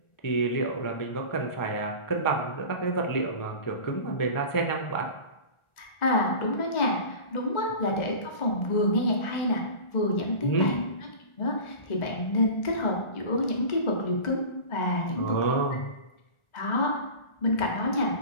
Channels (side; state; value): right; late; 1.4 ms